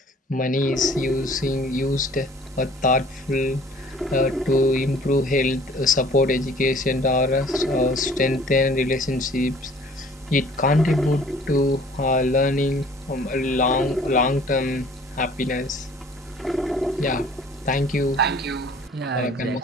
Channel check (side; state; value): both; normal; correlation 0.52